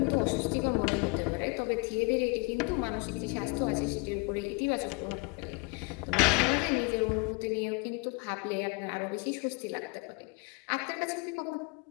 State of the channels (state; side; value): quieter; right; 31.2 dB